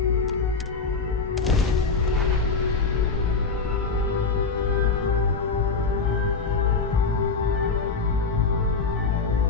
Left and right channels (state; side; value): quieter; right; 4.5 dB